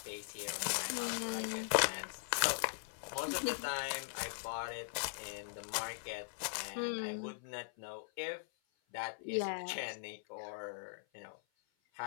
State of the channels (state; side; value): silent; right; 51 dB below the other